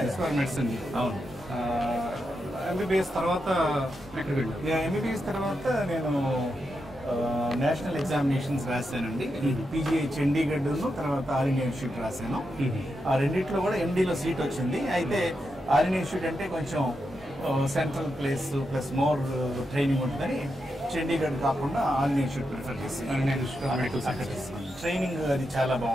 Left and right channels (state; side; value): normal; both; correlation 0.86